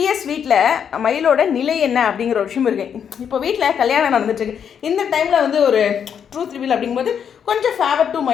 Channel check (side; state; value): right; quieter; 7.9 dB